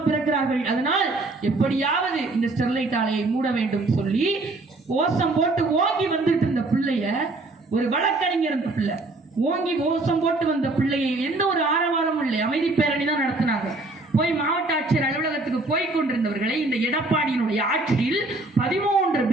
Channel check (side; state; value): left; quieter; 3.0 dB